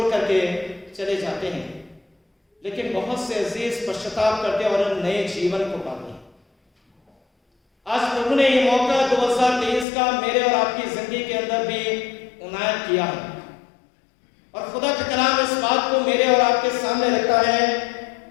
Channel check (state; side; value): drops out; right; at 9.9 s